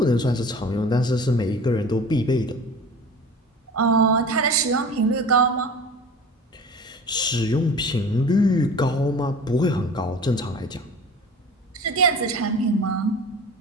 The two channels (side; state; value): both; normal; correlation 0.39